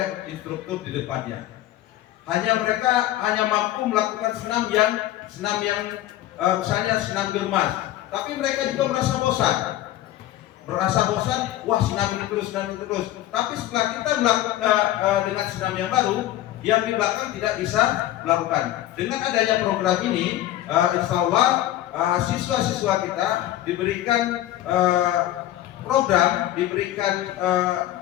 instruktur di depannya. Mereka hanya mampu melakukan senam yang misalnya senam germas, tapi mereka juga merasa bosan, wah senam ini terus. Tapi setelah kita melakukan dengan senam yang baru, yang di belakang tidak bisa melakukan. Dengan adanya program ini, insya Allah siswa-siswa kita diberikan program, diberikan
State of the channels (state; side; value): quieter; right; 14.1 dB